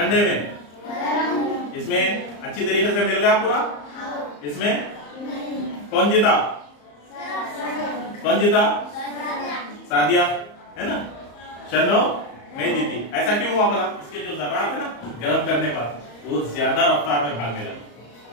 में? इसमें अच्छी तरीके से मिल गया पूरा। इसमें कौन जीता, कौन जीता? सादिया है ना, शन्नो नहीं जीती। ऐसा क्यों हुआ बोला? इसके जो जर्रात है ना गर्म करने पर वो ज्यादा रफ्तार में भागने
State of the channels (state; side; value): late; right; 34 ms